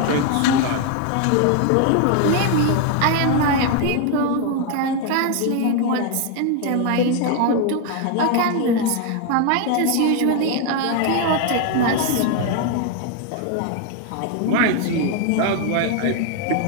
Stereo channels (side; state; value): both; different; correlation 0.01